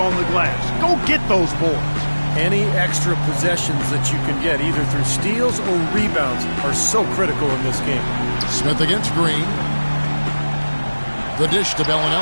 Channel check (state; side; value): inverted; both; correlation -1.00